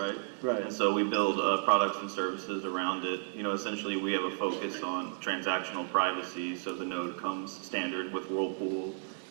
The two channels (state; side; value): silent; left; digital silence